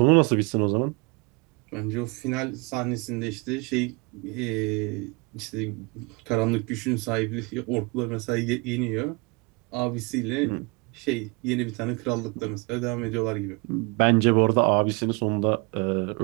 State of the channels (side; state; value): left; quieter; 29.0 dB